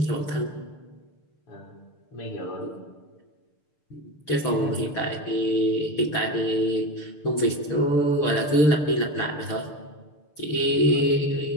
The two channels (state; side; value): late; right; 6.7 ms